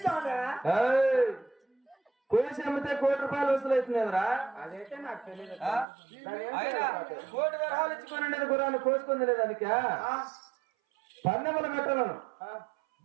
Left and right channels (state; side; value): drops out; left; at 5.9 s